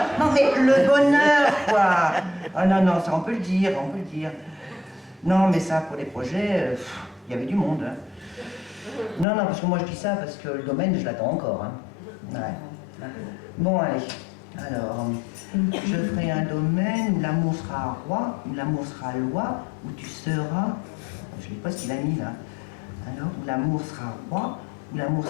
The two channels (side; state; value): right; drops out; at 9.2 s